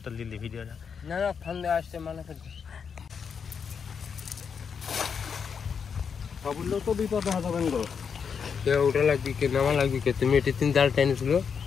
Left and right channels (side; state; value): right; quieter; 6.5 dB